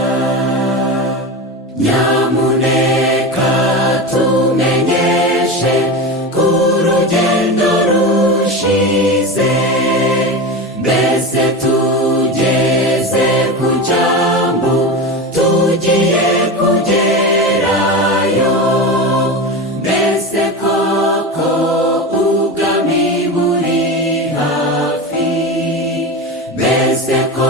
Nyamuneka tumenyeshe ko urugendo rushize, mbese tugeze ku cyambu tugiye kugerayo. Mbese koko ubwami buri hafi, mbese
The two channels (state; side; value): normal; both; correlation 0.23